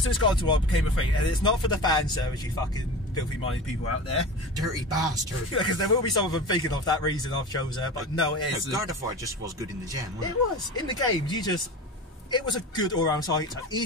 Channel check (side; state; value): both; normal; correlation 0.31